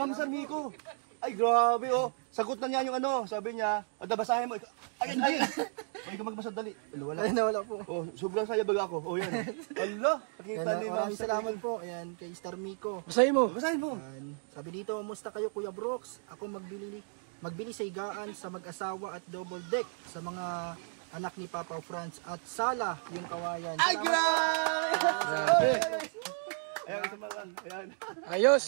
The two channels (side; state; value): left; silent; 56 dB below the other